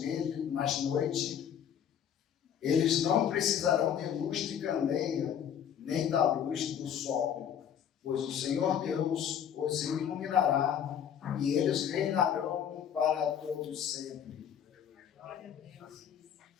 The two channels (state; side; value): quieter; right; 8.9 dB